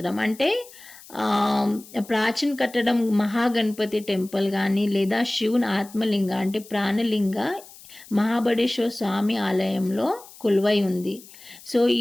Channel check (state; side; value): noise; left; hiss, 20 dB below the sound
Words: అంటే ప్రాచీన కట్టడం మహాగణపతి టెంపుల్ కానీ లేదా శివుని ఆత్మలింగ అంటే ప్రాణలింగ మహాబడేశ్వర స్వామి ఆలయంలో కొలువై ఉంది. సో